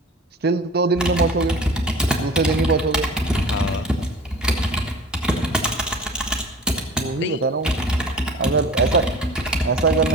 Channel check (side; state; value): both; normal; correlation 0.41